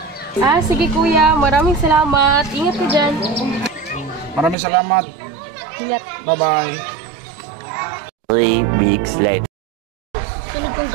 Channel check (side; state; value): left; drops out; at 4.5 s